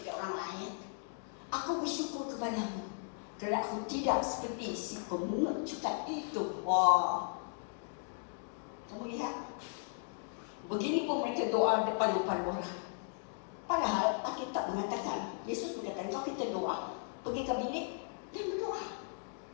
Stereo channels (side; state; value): right; silent; digital silence